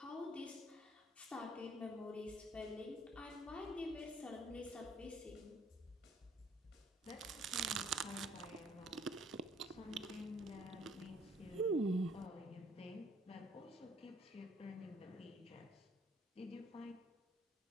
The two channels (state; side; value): normal; both; correlation 0.61